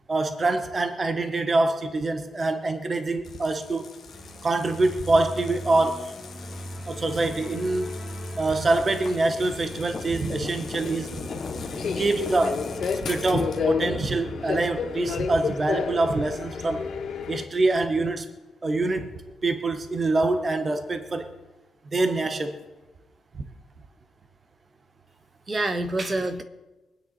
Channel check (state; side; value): normal; both; correlation 0.89